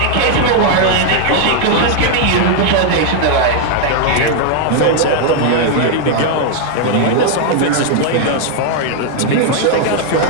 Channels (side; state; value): both; different; correlation 0.00